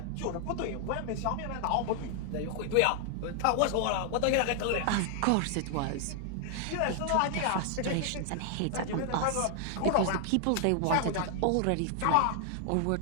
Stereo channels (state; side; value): different; both; correlation 0.00